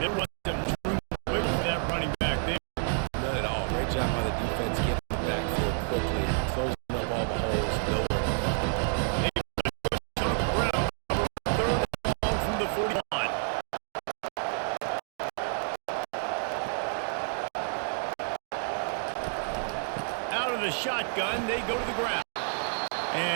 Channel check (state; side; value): silent; left; 58 dB below the other